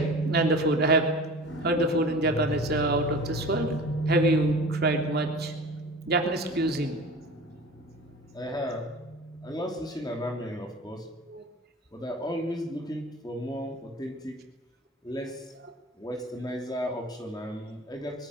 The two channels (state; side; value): normal; both; correlation 0.38